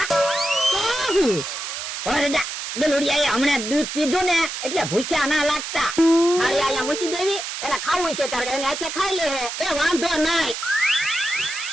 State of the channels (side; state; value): right; noise; hiss, 6 dB below the sound